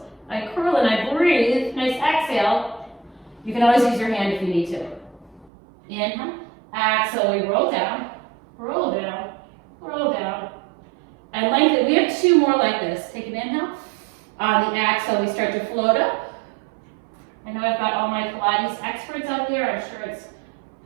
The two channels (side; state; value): left; drops out; at 5.5 s